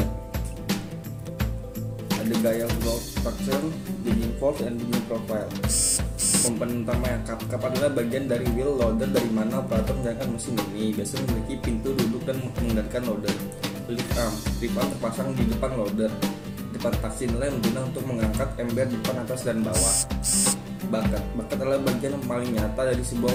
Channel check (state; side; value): identical; both; correlation 1.00